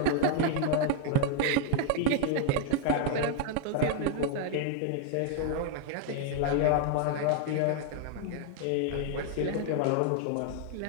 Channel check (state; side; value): different; both; correlation 0.00